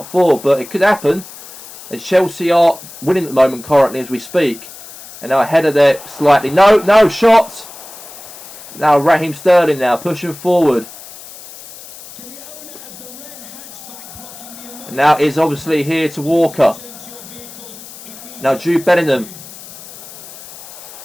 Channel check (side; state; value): left; noise; hiss, 16 dB below the sound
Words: 4? But it could happen. As Chelsea are winning at the moment currently as we speak. And now a header there slightly. No shot. Now Raheem Sterling now pushing forward. And now is obviously here to Walker. Now Jude Bellingham.